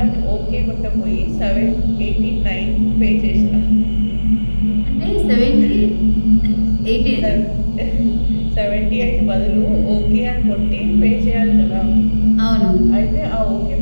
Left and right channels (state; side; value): inverted; both; correlation -1.00